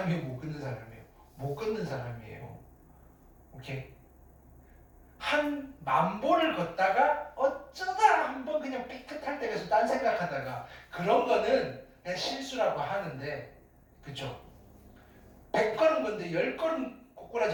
못 걷는 사람이에요? 못 걷는 사람이에요. 오케이? 한 10,000보를 걷다가 어쩌다 한번 그냥 삐끗할 때가 있어. 딴 생각하다가 그런 거는 그냥 실수라고 하는데, 그쵸? 100걸음 걷는데 10걸음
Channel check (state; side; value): identical; both; correlation 1.00